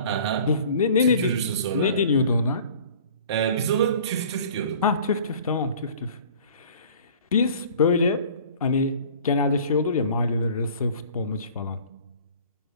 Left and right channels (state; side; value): inverted; both; correlation -0.47